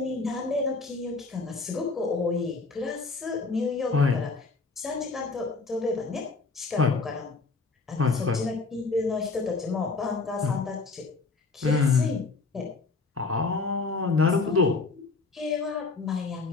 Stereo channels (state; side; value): quieter; right; 4.0 dB